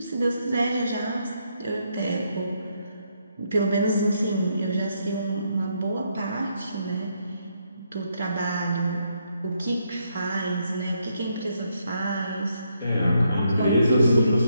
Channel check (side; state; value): both; inverted; correlation -0.76